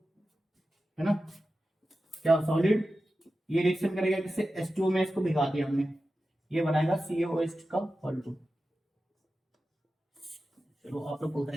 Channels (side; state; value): both; normal; correlation 0.93